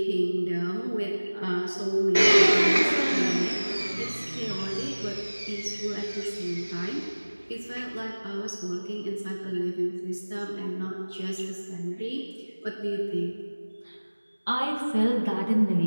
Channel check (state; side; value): inverted; both; correlation -1.00